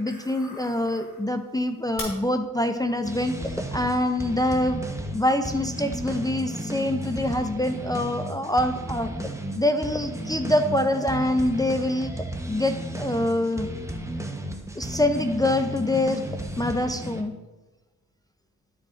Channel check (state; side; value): normal; both; correlation 0.69